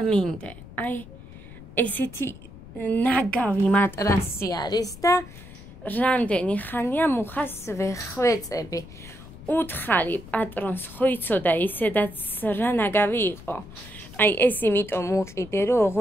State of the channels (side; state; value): left; noise; rumble, 17 dB below the sound